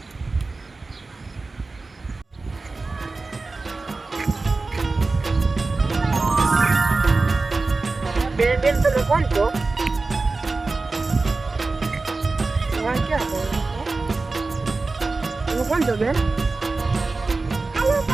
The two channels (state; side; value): quieter; left; 3.7 dB